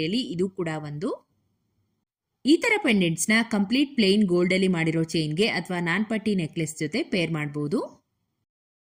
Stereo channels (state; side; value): identical; both; correlation 1.00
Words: ಇದು ಕೂಡ ಒಂದು. ಈ ತರ ಪೆಂಡೆಂಟ್ಸ್ ನ ಕಂಪ್ಲೀಟ್ ಪ್ಲೇನ್ ಗೋಲ್ಡ್ ಅಲ್ಲಿ ಮಾಡಿರೋ ಚೈನ್ಗೆ ಅಥವಾ ನಾನ್ಪಟ್ಟಿ ನೆಕ್ಲೆಸ್ ಜೊತೆ ಪೇರ್ ಮಾಡಬಹುದು.